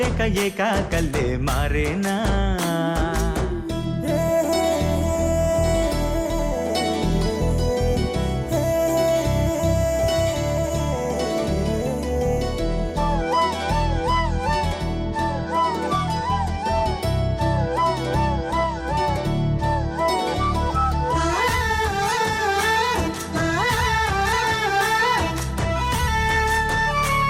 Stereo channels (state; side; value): identical; both; correlation 1.00